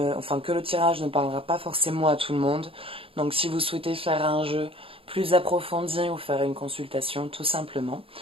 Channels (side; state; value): left; late; 0.27 ms